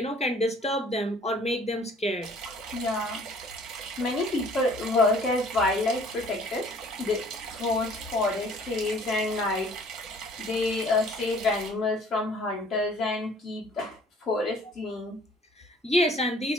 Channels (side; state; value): both; normal; correlation 0.54